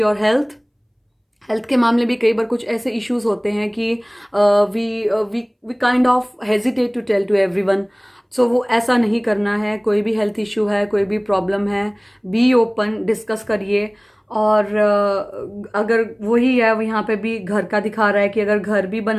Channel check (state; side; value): identical; both; correlation 1.00